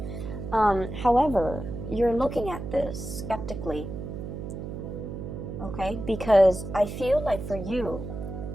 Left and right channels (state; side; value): noise; right; hum, 7 dB below the sound